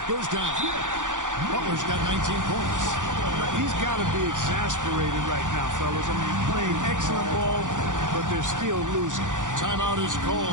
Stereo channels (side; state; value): left; late; 0.87 ms